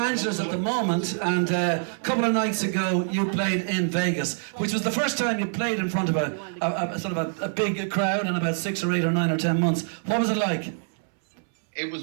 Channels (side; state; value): left; silent; 61 dB below the other